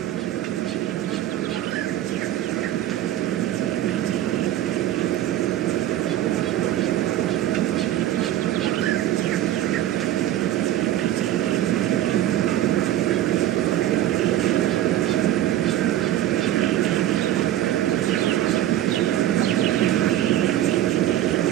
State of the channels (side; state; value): left; quieter; 12.9 dB